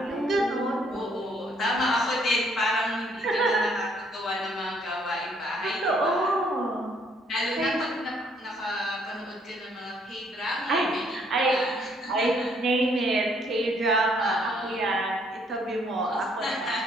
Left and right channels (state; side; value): normal; both; correlation 0.66